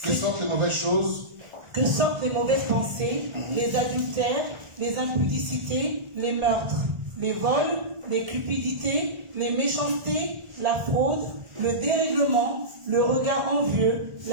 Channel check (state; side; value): late; left; 1.4 ms